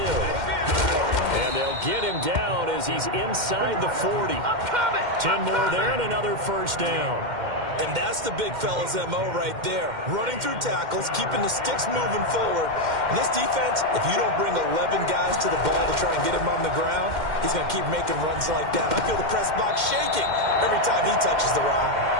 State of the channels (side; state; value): left; late; 2.1 ms